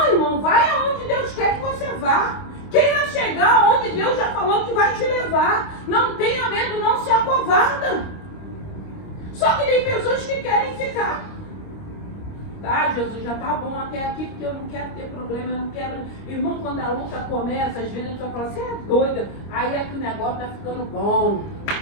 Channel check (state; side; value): late; right; 26 ms